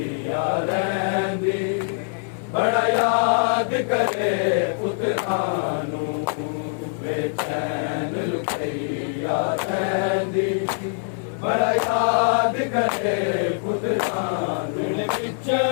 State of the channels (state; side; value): silent; right; 58 dB below the other